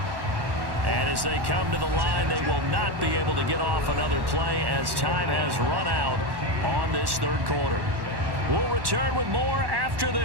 As they come to the line, they will not be able to get off another play as time has run out on this 3rd quarter. We'll return with more after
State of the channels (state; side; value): late; left; 1.1 ms